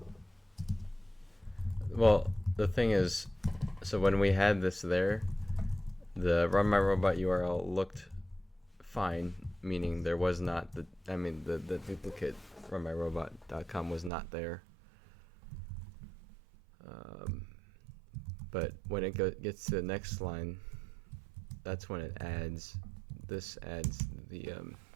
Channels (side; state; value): left; drops out; at 14.1 s